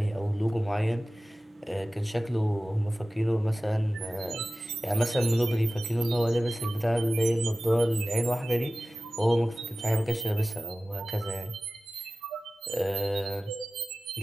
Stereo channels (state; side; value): normal; both; correlation 0.96